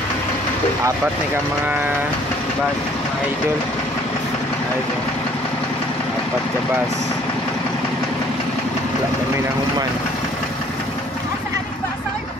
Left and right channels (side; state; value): both; normal; correlation 0.58